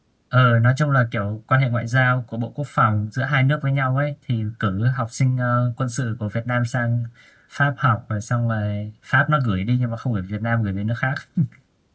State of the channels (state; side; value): identical; both; correlation 1.00